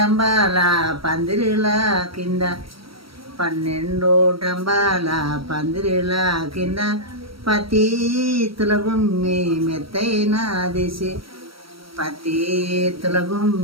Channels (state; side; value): late; left; 0.75 ms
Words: పందిరిల కింద 12 టంబాల పందిరిల కింద పతి తుల గుమ్మి మెత్తైన దిసి పతి తుల